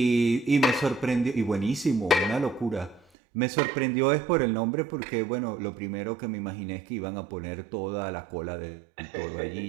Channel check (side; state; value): left; drops out; at 3.0 s